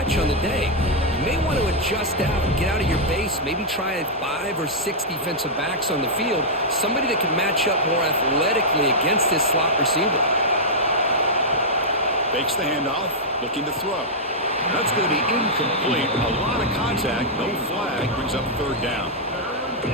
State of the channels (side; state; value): both; normal; correlation -0.07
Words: on the day. You may want to adjust out, get out of your base, maybe try 5 or 6 defensive backs on the field, somebody that can match up more athletically against this slot receiver. Fakes the handoff, looking to throw. That's going to be incomplete. A lot of contact, no flag, brings up third down.